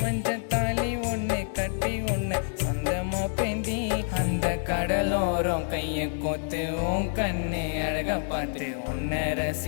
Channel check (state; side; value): silent; right; digital silence